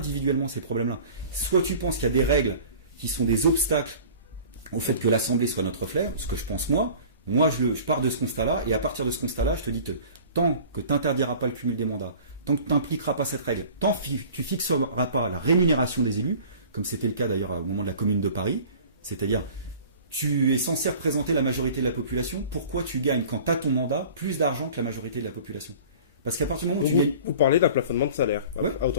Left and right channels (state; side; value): inverted; both; correlation -0.44